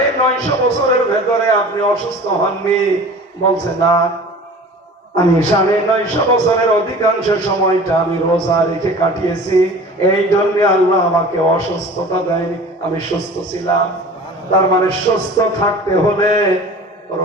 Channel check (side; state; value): both; normal; correlation 0.41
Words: বছরের ভেতরে আপনি অসুস্থ হননি? বলছে না, আমি 950 বছরের অধিকাংশ সময়টা আমি রোজা রেখে কাটিয়েছি, এই জন্য আল্লাহ আমাকে অসুস্থতা দেয়নি, আমি সুস্থ ছিলাম। তার মানে সুস্থ থাকতে হলে